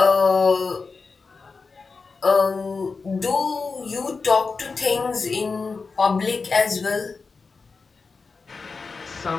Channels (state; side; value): quieter; right; 4.5 dB